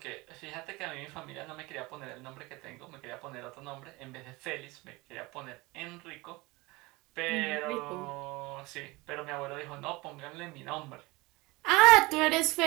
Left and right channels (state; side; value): quieter; left; 23.0 dB